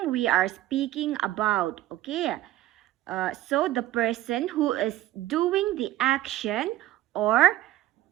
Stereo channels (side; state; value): left; quieter; 14.9 dB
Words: we are speaking about. Okay, so the person who is doing the action, or